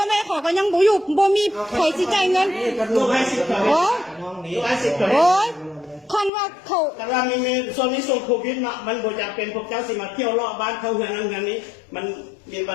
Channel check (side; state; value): right; drops out; at 6.3 s